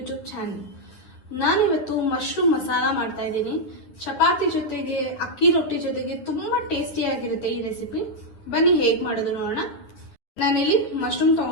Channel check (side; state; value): right; late; 10 ms